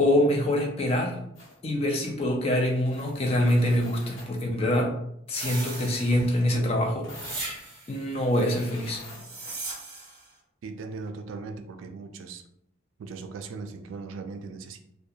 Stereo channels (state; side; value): normal; both; correlation 0.63